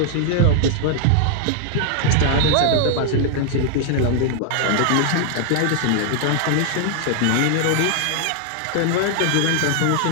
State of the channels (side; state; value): both; different; correlation 0.00